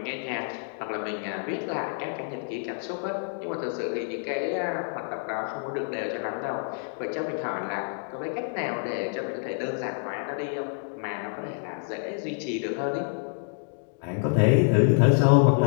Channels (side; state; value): right; silent; 60 dB below the other